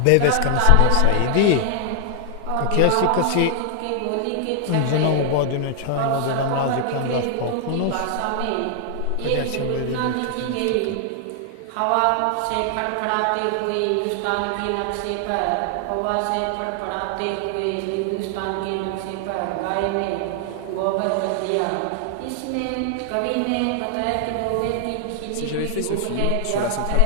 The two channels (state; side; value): different; both; correlation 0.00